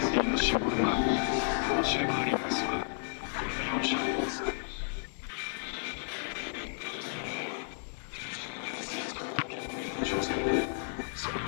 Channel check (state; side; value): silent; right; digital silence